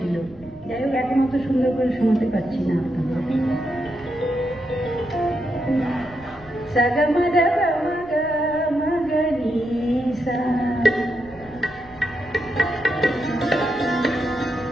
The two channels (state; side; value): noise; right; rumble, 22 dB below the sound